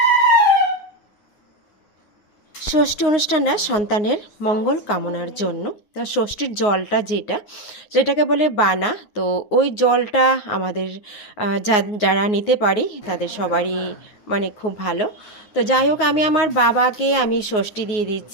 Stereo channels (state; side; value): late; right; 9.5 ms